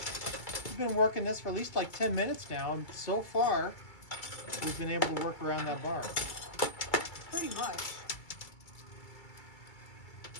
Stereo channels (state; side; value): late; right; 2.3 ms